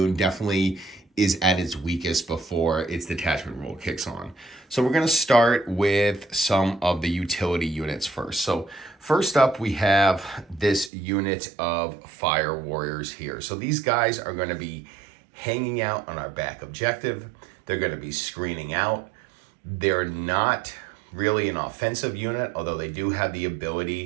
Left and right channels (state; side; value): drops out; left; at 10.9 s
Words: definitely is at its weakest before its detachment rule kicks on. So we're going to start with some of the utility units first. So first up, we have this unit of fire warriors here. So these guys are going to be hanging out on our back objective. They're going to be screening out. They're not really an offensive unit, although they do have the